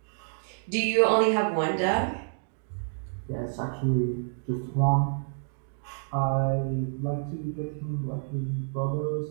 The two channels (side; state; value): left; silent; digital silence